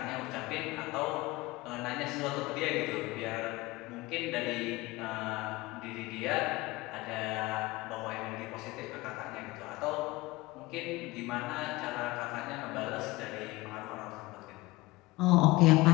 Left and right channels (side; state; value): right; quieter; 21.0 dB